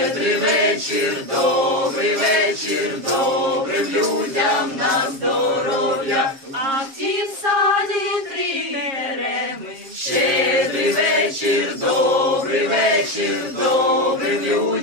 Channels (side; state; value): left; late; 7.4 ms